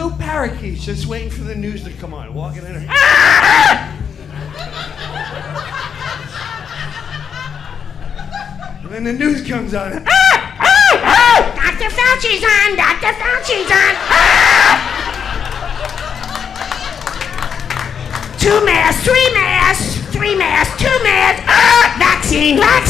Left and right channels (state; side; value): quieter; right; 7.3 dB